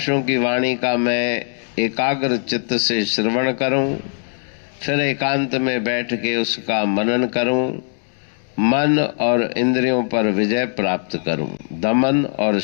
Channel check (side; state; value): right; silent; 66 dB below the other